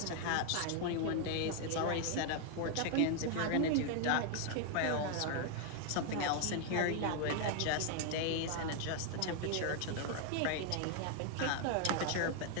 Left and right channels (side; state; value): both; different; correlation 0.00